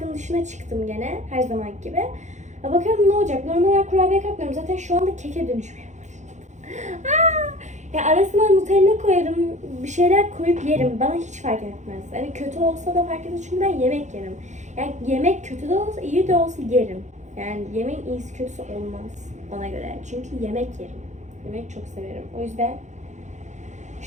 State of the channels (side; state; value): left; late; 0.34 ms